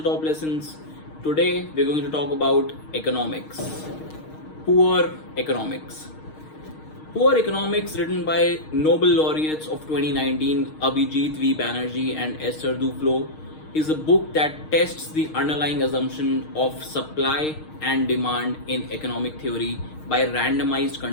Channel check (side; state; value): right; late; 6.4 ms